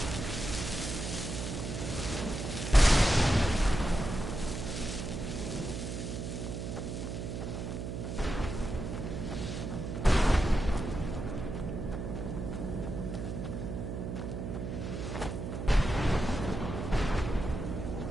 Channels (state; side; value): noise; right; hum, 5 dB below the sound